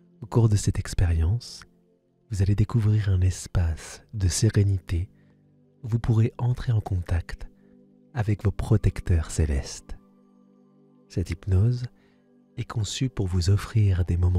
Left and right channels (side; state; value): both; identical; correlation 1.00